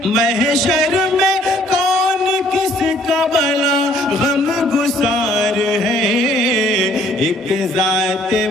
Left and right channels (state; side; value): normal; both; correlation 0.61